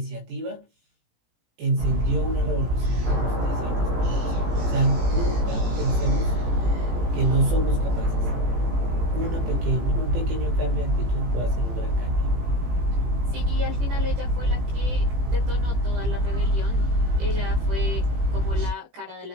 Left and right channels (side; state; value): left; late; 18 ms